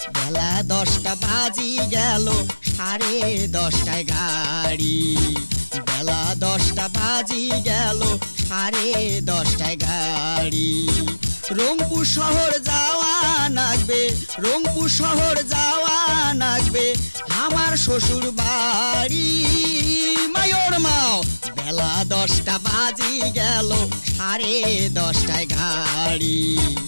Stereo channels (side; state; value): both; inverted; correlation -1.00